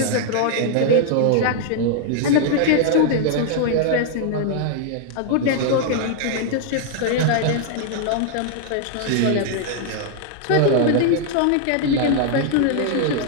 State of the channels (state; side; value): different; both; correlation 0.00